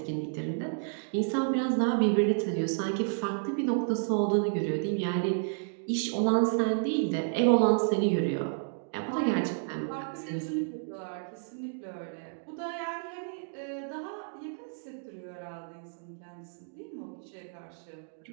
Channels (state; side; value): silent; left; digital silence